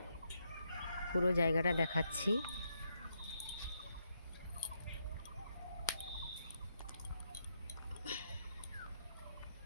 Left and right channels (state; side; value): inverted; both; correlation -0.79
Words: পুরো জায়গাটা দেখাচ্ছি।